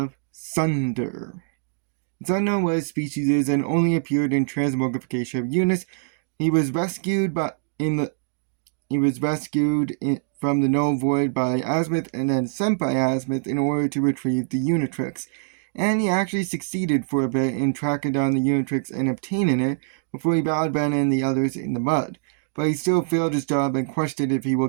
Sunder. It's unknown what his species is and only appeared in transmogrification of units. He was rescued from the Null Void by Azimuth and then sent by Azimuth in order to retrieve the Unitrix. And he actually succeeded for a bit in tracking down the Unitrix and obtaining it before he battled Ben and the others in the mud. But he still failed his job and questioned if he will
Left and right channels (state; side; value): silent; left; digital silence